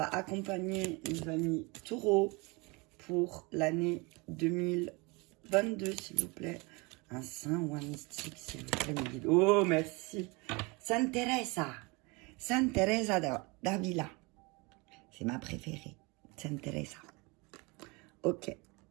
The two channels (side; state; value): left; quieter; 27.3 dB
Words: accompagner nos amis taureaux pour l'année 2022, s'il vous plaît. Un saint ou un mystique, s'il vous plaît, mes guides. Oh, merci. Sainte Teresa. Sainte Teresa d'Avila. C'est ma préférée. Sainte Teresa. Ok.